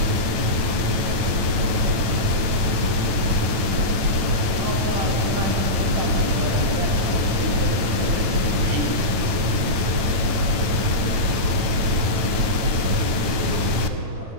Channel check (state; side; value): late; left; 9.2 ms